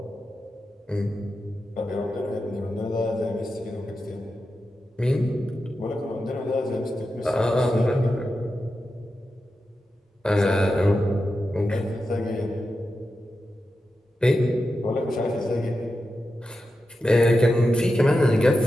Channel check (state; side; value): normal; both; correlation 0.90